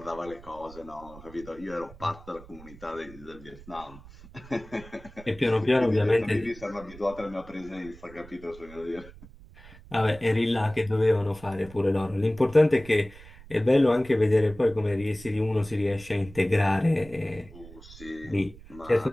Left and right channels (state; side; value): noise; right; rumble, 19 dB below the sound